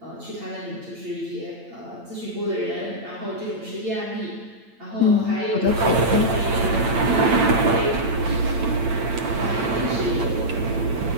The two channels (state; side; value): late; left; 8.8 ms